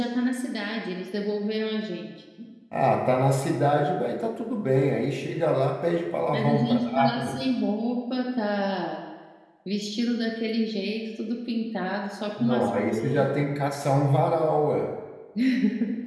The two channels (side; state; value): both; identical; correlation 1.00